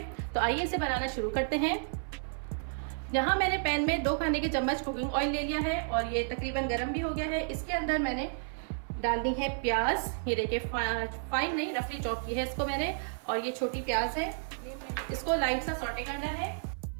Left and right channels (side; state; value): left; silent; 57 dB below the other